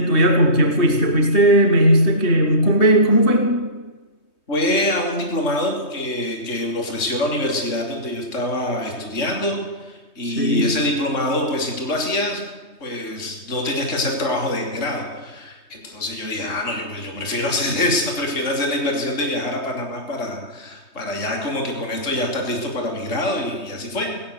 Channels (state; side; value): late; right; 3.2 ms